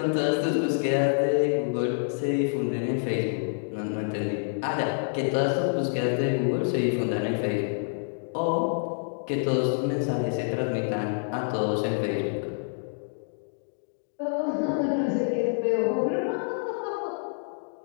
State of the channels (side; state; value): right; silent; digital silence